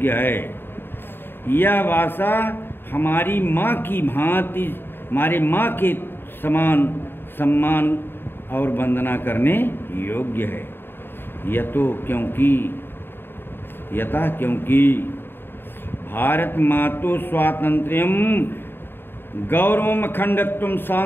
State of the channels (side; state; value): right; late; 0.10 ms